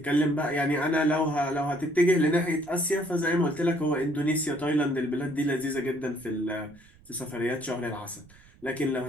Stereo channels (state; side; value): noise; right; rumble, 26 dB below the sound